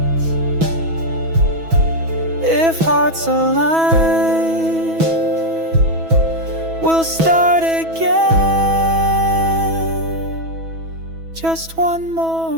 if hearts align, we'll start again just one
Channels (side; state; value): left; late; 6.1 ms